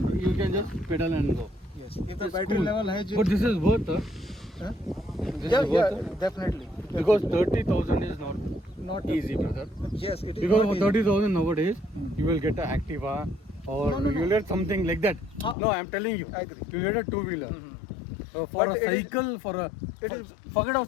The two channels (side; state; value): right; drops out; at 15.6 s